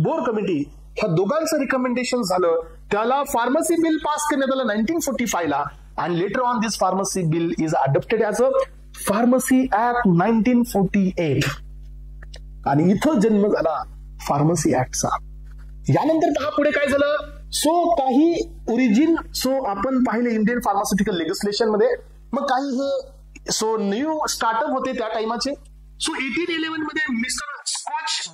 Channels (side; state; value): both; identical; correlation 1.00